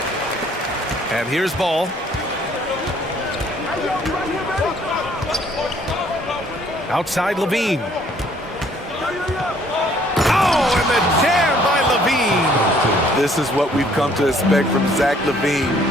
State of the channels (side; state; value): both; normal; correlation 0.61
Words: And here's Ball. Outside Levine. Oh, and the jam by Levine. This is what we've come to expect from Zach LaVine.